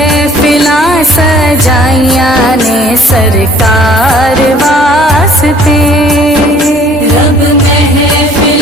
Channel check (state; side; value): normal; both; correlation 0.55